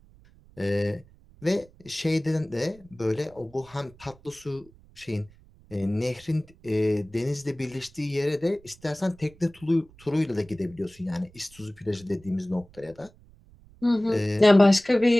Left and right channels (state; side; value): noise; right; rumble, 26 dB below the sound